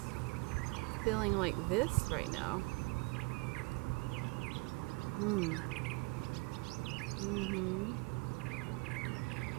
feeling like this right now.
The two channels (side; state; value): left; quieter; 27.6 dB